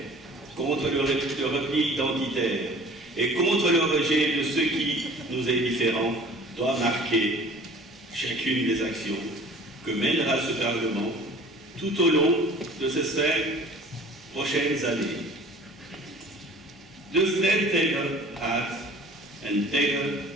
contre le repli identitaire et contre le rejet de ce qui nous est différent doit marquer chacune des actions que mènera ce Parlement tout au long de ces 5 prochaines années. De strijd tegen haat en tegen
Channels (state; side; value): normal; both; correlation 0.47